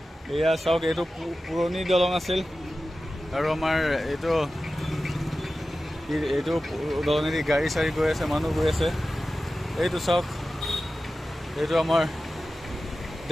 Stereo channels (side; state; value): both; normal; correlation 0.94